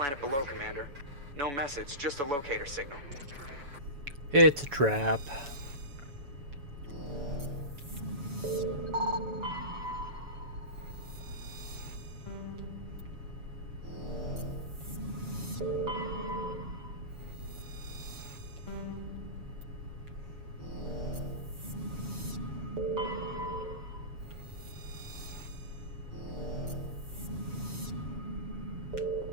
below, Commander. No message, just a locator signal. It's a trap.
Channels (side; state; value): left; late; 7.1 ms